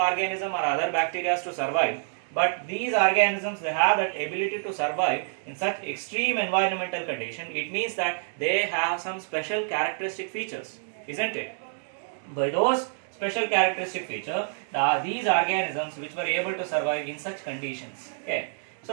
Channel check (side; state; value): left; silent; digital silence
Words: or other bacteria to survive. But these organisms, they have that ability to survive in such extreme environmental condition. It means that they have some special characteristic features, isn't it? By those special characteristic feature, these organisms which were able to survive in such conditions. Okay,